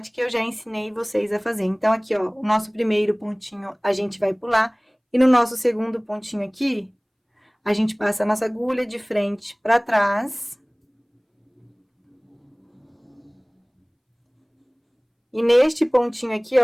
que eu já ensinei vocês a fazer. Então, aqui, ó, o nosso primeiro pontinho a gente vai pular. E no nosso segundo pontinho aqui, a gente passa a nossa agulha de frente para trás. E neste pontinho aqui,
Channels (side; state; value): both; identical; correlation 1.00